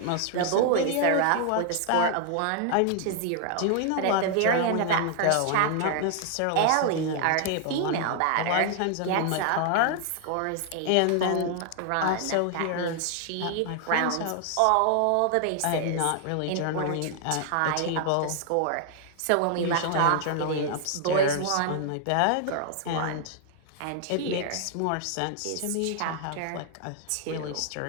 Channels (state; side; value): different; both; correlation 0.00